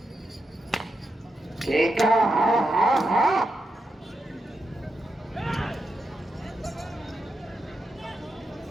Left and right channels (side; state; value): both; normal; correlation 0.85